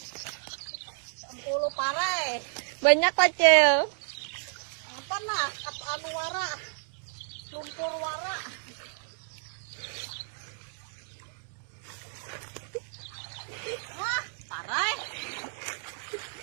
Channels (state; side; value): silent; left; digital silence